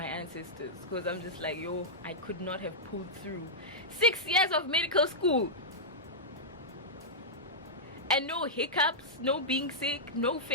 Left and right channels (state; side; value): normal; both; correlation -0.10